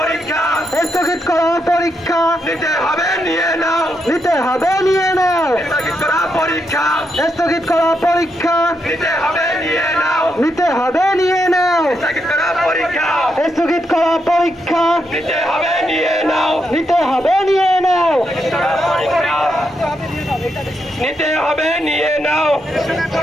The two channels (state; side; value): normal; both; correlation 0.81